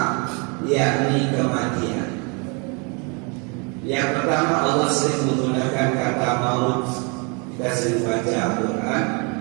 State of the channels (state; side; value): quieter; left; 33.1 dB